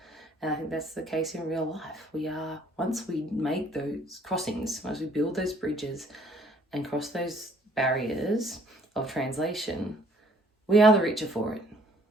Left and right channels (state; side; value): normal; both; correlation 0.60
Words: And I think that's the case in real life. We are, once we make those crossings, once we build those bridges and cross those barriers of translation, we are the richer for it.